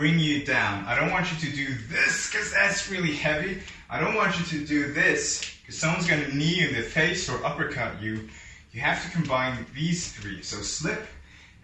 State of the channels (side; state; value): both; identical; correlation 1.00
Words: you down. I don't want you to do this because that's really heavy. I don't want you to do this because someone's going to knee you in the face or uppercut you. You have to combine these 3. So slip,